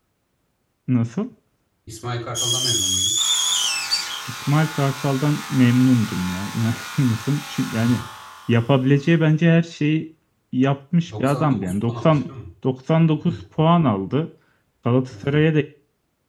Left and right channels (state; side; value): identical; both; correlation 1.00